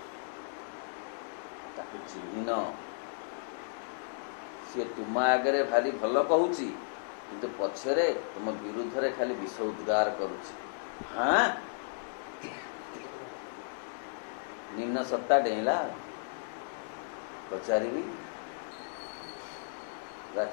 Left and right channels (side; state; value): right; silent; digital silence